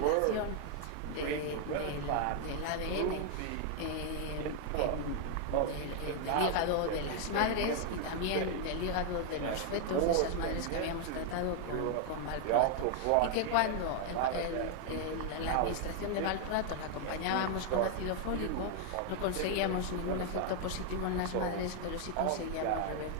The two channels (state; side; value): different; both; correlation 0.00